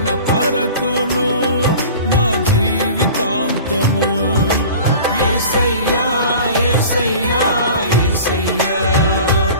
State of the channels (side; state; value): both; inverted; correlation -0.41